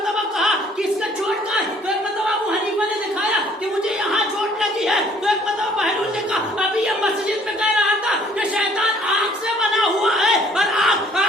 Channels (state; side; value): normal; both; correlation 0.59